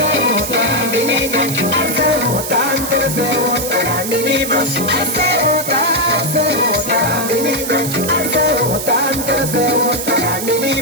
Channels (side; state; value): right; noise; hiss, 6 dB below the sound